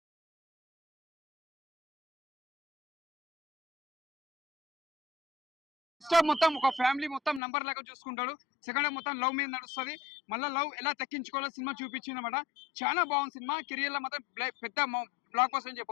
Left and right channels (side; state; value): right; drops out; at 7.4 s